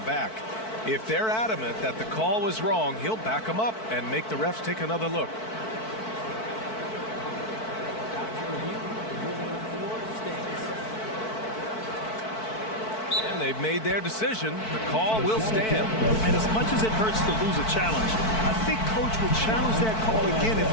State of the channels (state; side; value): late; right; 4.5 ms